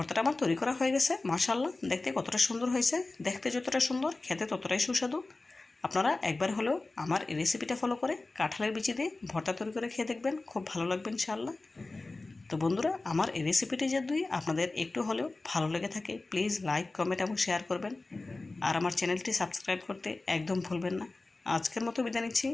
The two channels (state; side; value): quieter; right; 3.3 dB